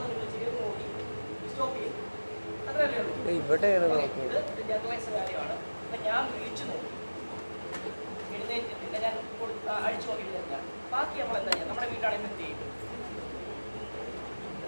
നിങ്ങൾ ചെയ്ത് നോക്കി സ്റ്റോപ്പ് ചെയ്യും. അത്രയല്ലേ ഉള്ളൂ. ഇവിടെ ഇത് ജനറലൈസ് കാര്യമാണ്. അപ്പം ഞാൻ വിളിച്ചു നോക്കി, എഴുന്നേറ്റില്ല. ഞാൻ അഴിച്ചു നോക്കി എഴുന്നേറ്റില്ല. ബാക്കി നമ്മൾ എന്താ ചെയ്യുക? നമ്മുടെ വീട്ടാണെങ്കിൽ എന്ത് ചെയ്യും?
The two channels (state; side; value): inverted; both; correlation -1.00